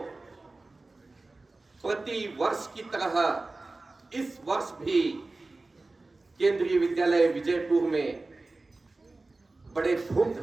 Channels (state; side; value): quieter; left; 3.3 dB